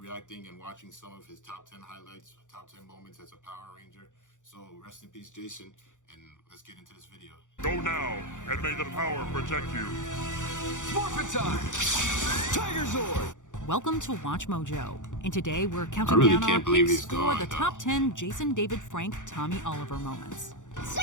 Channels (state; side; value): late; right; 0.86 ms